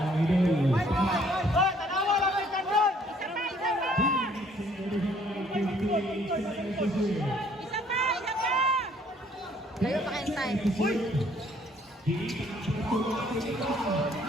Hoy, tanawa lang kayo kandun! Layo pa kayong time.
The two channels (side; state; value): both; normal; correlation 0.62